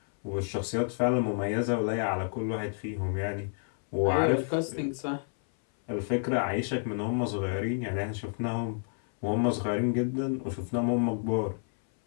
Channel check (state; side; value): silent; right; 58 dB below the other